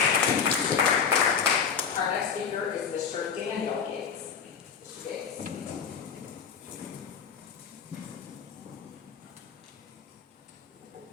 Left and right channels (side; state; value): right; quieter; 6.7 dB